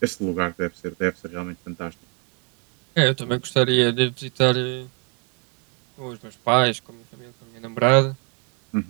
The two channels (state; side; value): quieter; left; 36.6 dB